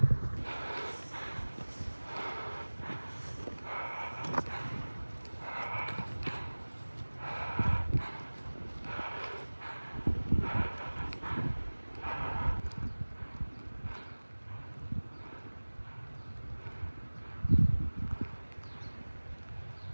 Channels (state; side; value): inverted; both; correlation -1.00